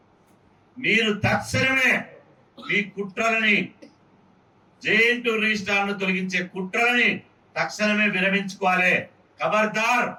మీరు తక్షణమే మీ కుట్రలని జేఎన్‌టూ రిజిస్ట్రార్ను తొలగించే కుట్రలని తక్షణమే విరమించుకోవాలి. ఖబర్దార్,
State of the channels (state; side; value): identical; both; correlation 1.00